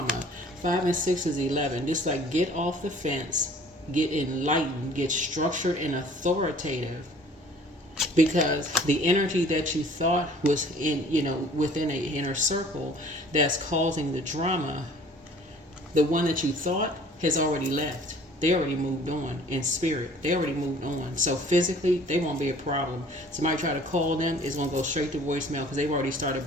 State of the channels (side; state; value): both; normal; correlation 0.51